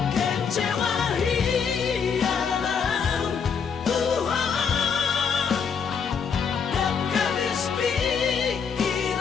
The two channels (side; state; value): right; quieter; 6.4 dB